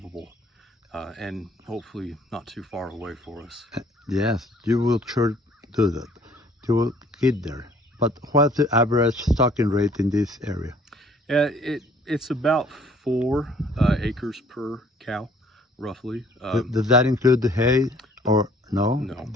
and hopefully not too far away for us. Yes, you will sure do that. You will get there. But what's the average stocking rate in this area? It's about 4 acres per cow, roughly. Does that include the hay or no? No.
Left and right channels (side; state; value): both; normal; correlation 0.58